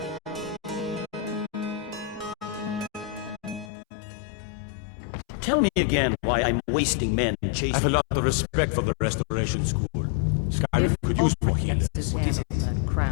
Tell me again why I'm wasting men chasing... I have a lot of respect for the Restoration School. Skyrim could use more healers. What is it?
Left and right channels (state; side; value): drops out; right; at 3.7 s